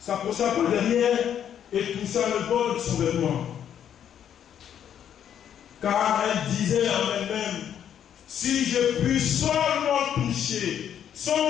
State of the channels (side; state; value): right; quieter; 9.4 dB